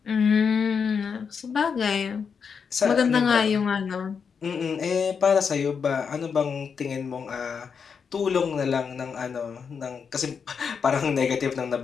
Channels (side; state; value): right; quieter; 6.2 dB